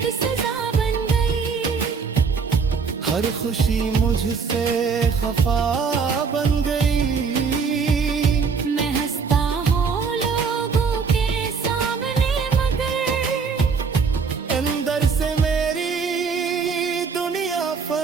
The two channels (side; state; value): left; quieter; 5.4 dB